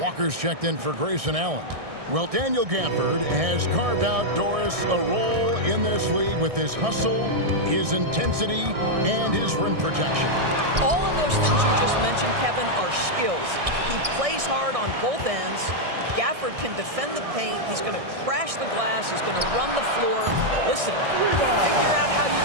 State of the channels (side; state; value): left; late; 1.6 ms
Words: checked in for Grayson Allen. Well, Daniel Gafford has carved out, Doris, a role in this league with his hustle, his intensity, and his rim protection. All of those things you just mentioned, Kevin, are skills. He plays hard on both ends. Gafford can defend the paint. He's going to crash the glass. He's going to run the floor. Listen, figure out how you